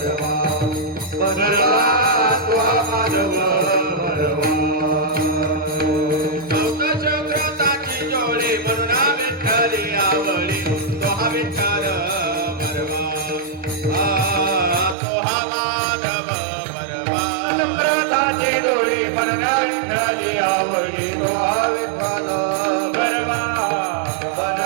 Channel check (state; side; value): drops out; left; at 15.0 s